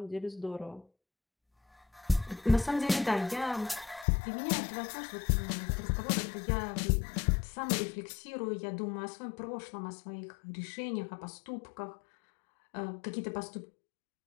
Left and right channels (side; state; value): right; drops out; at 4.0 s